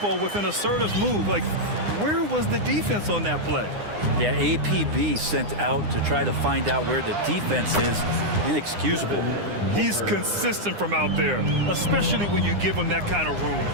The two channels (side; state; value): left; late; 9.8 ms